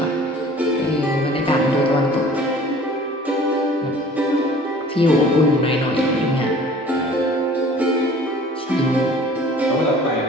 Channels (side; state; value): both; normal; correlation 0.48